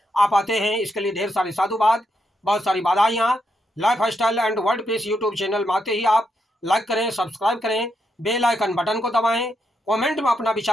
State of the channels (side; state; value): both; normal; correlation 0.81